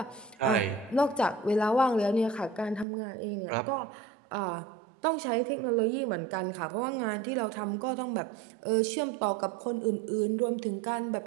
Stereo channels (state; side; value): drops out; left; at 2.9 s